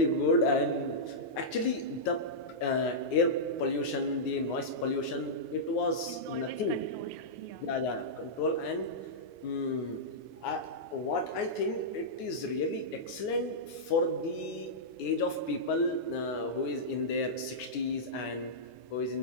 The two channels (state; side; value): late; right; 9.6 ms